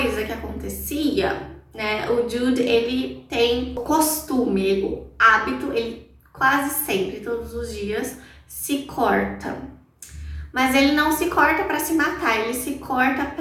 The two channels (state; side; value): identical; both; correlation 1.00